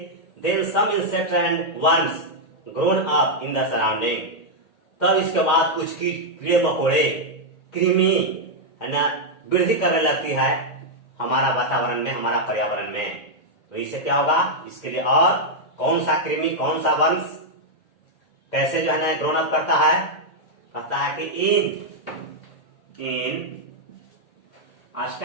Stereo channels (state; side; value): late; right; 1.8 ms